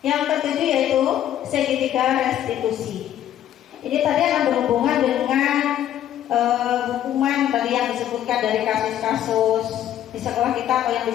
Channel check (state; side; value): quieter; right; 11.3 dB